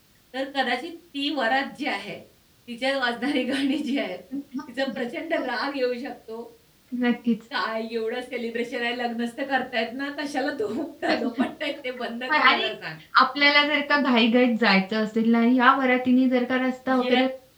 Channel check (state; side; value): identical; both; correlation 1.00